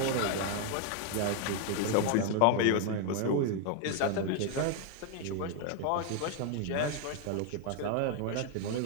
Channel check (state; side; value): different; both; correlation 0.01